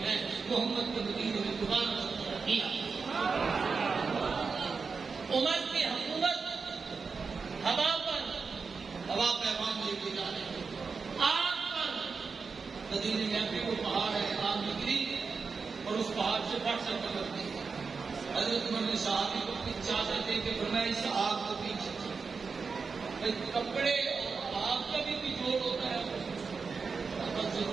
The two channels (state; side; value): quieter; left; 5.0 dB